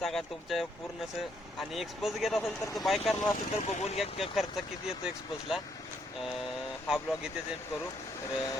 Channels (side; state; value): both; normal; correlation 0.72